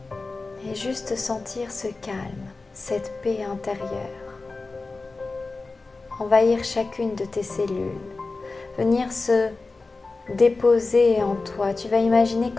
et juste sentir ce calme, cette paix intérieure envahir chacune de tes cellules, venir se déposer en toi. Tu vas imaginer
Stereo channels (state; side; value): quieter; right; 3.7 dB